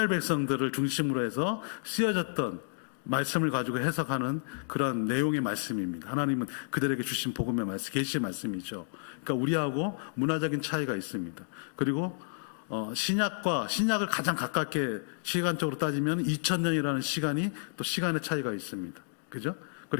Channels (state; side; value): silent; right; digital silence